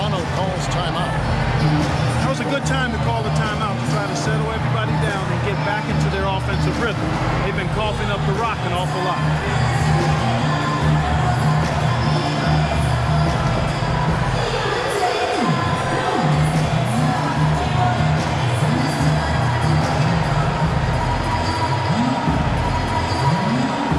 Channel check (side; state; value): both; identical; correlation 1.00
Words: calls timeout. That was a good time to call the timeout to try to settle everybody down and get back into their offensive rhythm. They've been coughing up the rock an awful lot.